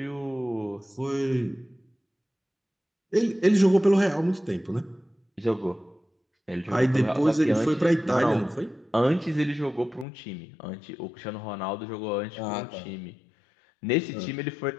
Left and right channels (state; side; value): drops out; right; at 10.1 s